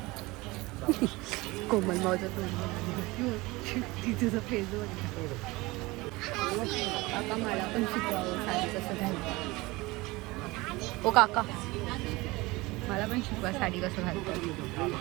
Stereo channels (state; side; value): quieter; left; 22.0 dB